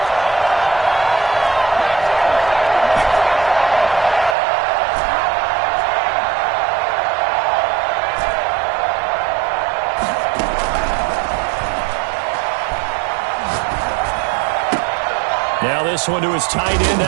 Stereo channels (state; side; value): drops out; left; at 4.4 s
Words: Now this one to his tight end